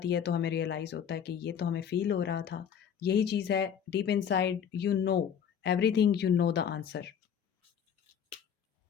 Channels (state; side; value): quieter; right; 8.1 dB